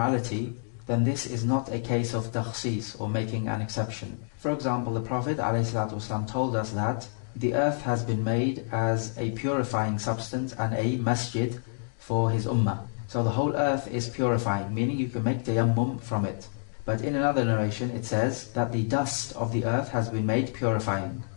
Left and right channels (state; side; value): silent; right; digital silence